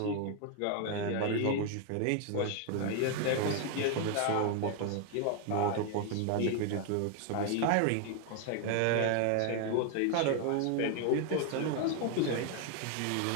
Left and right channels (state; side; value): different; both; correlation 0.01